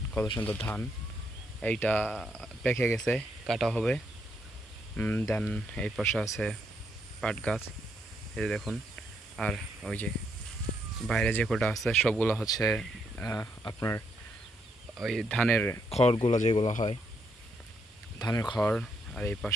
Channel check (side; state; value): both; normal; correlation 0.76